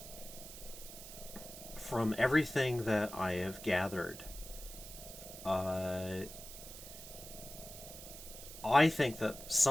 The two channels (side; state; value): right; noise; hiss, 13 dB below the sound